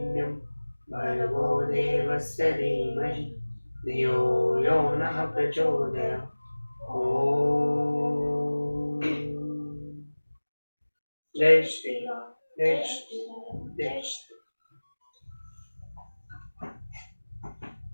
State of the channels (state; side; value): inverted; both; correlation -1.00